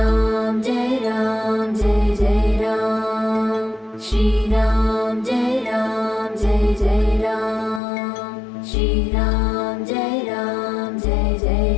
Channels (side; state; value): right; drops out; at 7.8 s